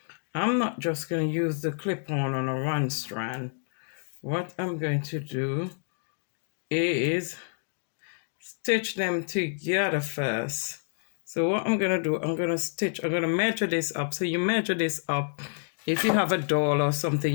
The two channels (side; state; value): right; silent; digital silence